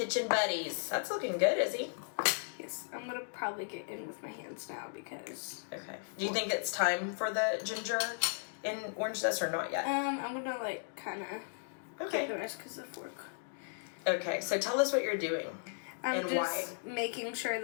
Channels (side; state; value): right; silent; digital silence